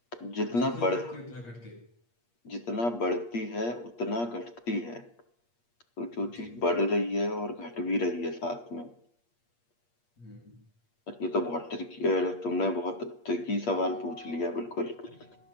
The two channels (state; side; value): late; right; 8.5 ms